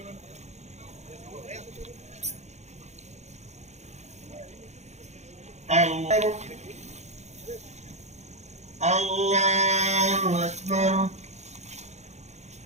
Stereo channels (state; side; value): late; left; 0.33 ms